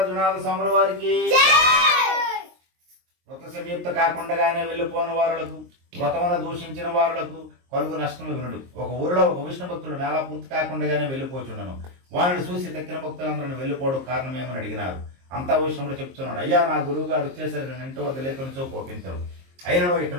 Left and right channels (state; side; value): late; left; 23 ms